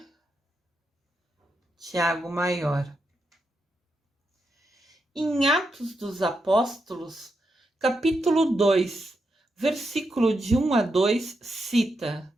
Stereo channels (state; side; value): normal; both; correlation 0.84